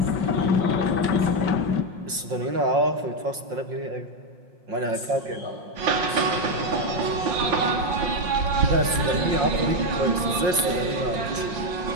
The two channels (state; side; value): late; left; 5.6 ms